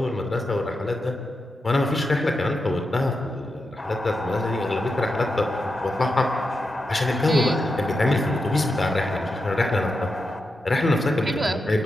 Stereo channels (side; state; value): both; normal; correlation 0.87